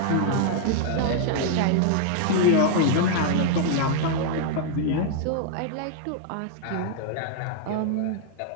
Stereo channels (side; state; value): both; different; correlation -0.01